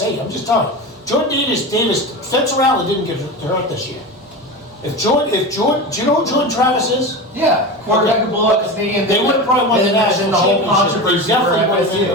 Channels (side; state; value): both; normal; correlation 0.25